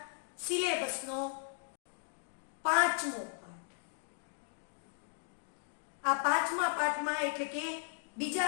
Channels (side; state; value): right; silent; digital silence